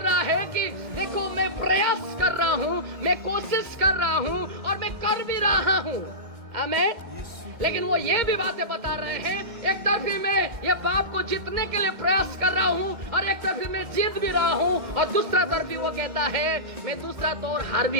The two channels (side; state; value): left; late; 1.9 ms